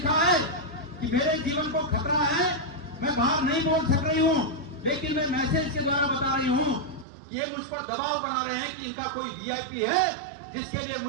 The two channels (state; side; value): drops out; left; at 7.1 s